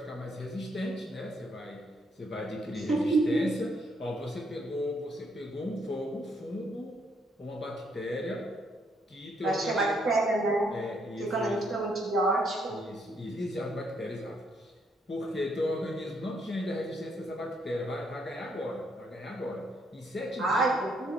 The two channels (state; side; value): normal; both; correlation 0.72